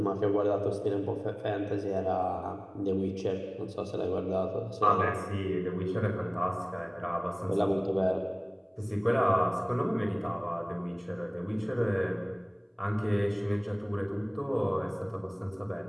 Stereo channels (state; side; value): identical; both; correlation 1.00